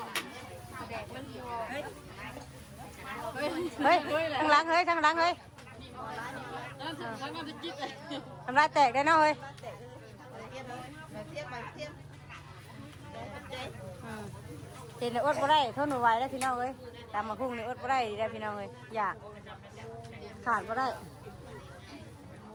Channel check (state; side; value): identical; both; correlation 1.00